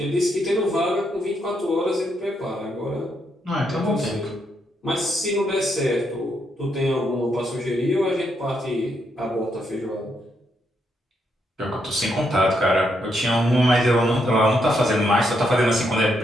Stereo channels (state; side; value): normal; both; correlation 0.78